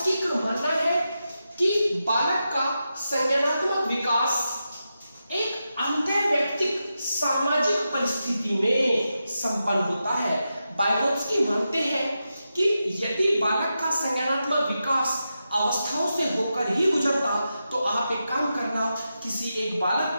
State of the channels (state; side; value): inverted; both; correlation -0.89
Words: का मानना है कि बालक का संज्ञानात्मक विकास एक अंतर्वैयक्तिक सामाजिक परिस्थिति में संपन्न होता है। वाइगोत्स्की मानते हैं कि यदि बालक का संज्ञानात्मक विकास अवस्थाओं से होकर ही गुजरता तो आप एक काम करना, किसी एक